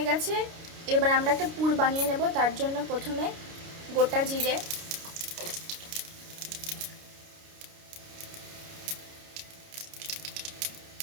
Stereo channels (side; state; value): left; late; 29 ms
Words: গেছে। এবার আমরা একটা পুর বানিয়ে নেব। তার জন্য প্রথমে গোটা জিরে,